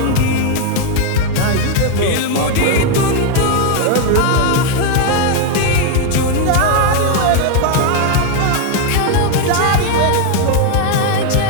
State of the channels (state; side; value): different; both; correlation 0.01